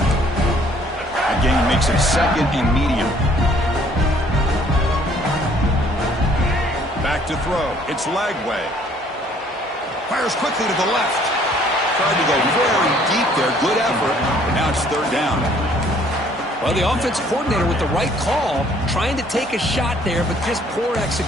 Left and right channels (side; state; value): both; normal; correlation 0.60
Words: That gain makes it second and medium. Back to throw. It's Lagway. Fires quickly to the left. Tried to go very deep there. Good effort. Now it's third down. Well, the offense coordinator with the right call, trying to take a shot there, but just poor